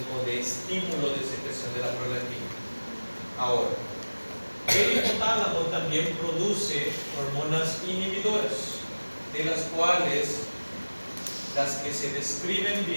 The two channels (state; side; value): inverted; both; correlation -1.00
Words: de estímulo de secreción de la prolactina. Ahora, el hipotálamo también produce hormonas inhibidoras, de las cuales las que se describen